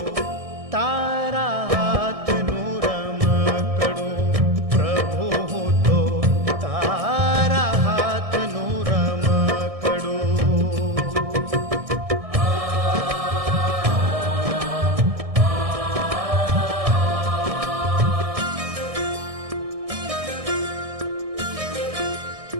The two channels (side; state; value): left; late; 1.6 ms